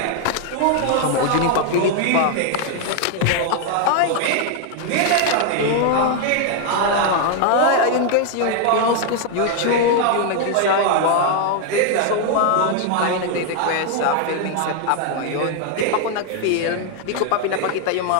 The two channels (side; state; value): both; different; correlation 0.00